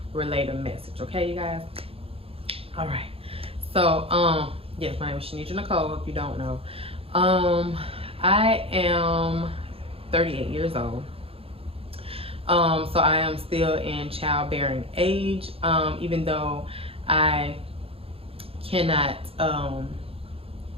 relay the message, okay you guys? All right, so yes, my name is ShaNedraNicole, if you don't know. I am 38 years old. So I am still in childbearing age, even though I cannot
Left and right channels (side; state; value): left; late; 0.27 ms